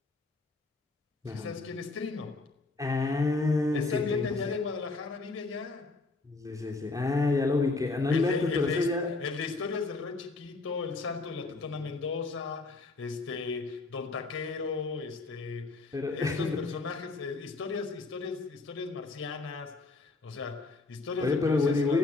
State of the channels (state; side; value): quieter; right; 3.5 dB